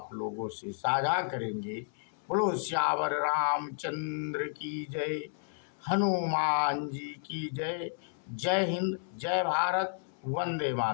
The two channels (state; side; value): silent; right; 56 dB below the other